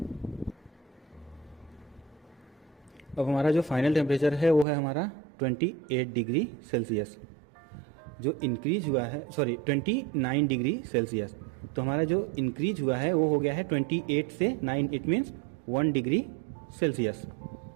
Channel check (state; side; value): drops out; left; at 4.7 s